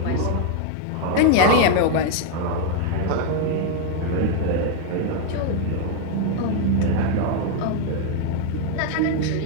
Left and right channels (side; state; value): both; different; correlation 0.00